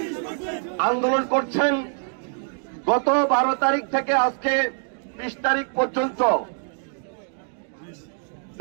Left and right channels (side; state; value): left; silent; 55 dB below the other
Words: আন্দোলন করছেন গত 12 তারিখ থেকে আজকে 20 তারিখ পর্যন্ত,